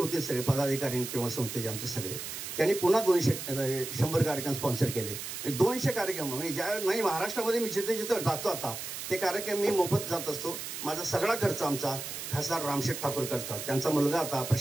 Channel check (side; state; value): right; noise; hiss, 7 dB below the sound